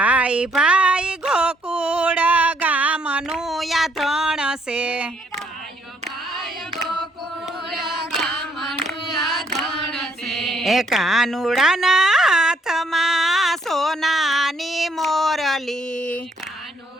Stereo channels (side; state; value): both; normal; correlation 0.68